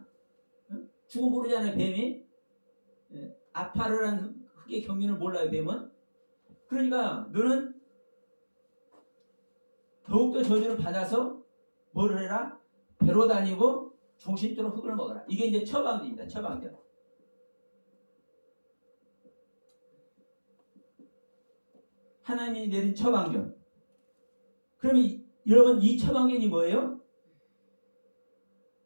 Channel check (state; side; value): inverted; both; correlation -1.00